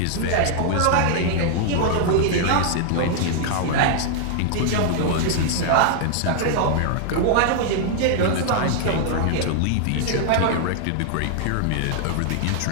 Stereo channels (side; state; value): both; different; correlation 0.00